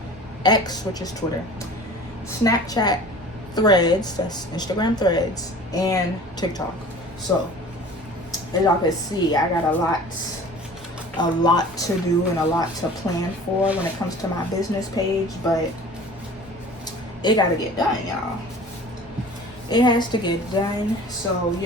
X, which is Twitter, Snapchat, Threads, that's Instagram Threads, and TikTok. So as y'all can see, I got a lot to do and a lot to plan for when it comes to my business page, but it gotta get done, y'all. It has to get done. So,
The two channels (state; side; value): normal; both; correlation 0.43